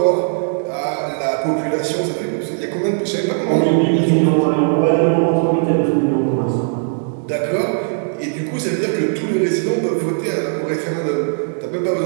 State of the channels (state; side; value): silent; left; digital silence